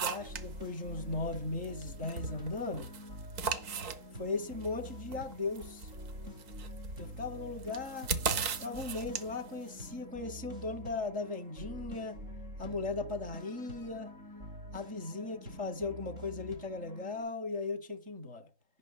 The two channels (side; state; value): left; late; 3.8 ms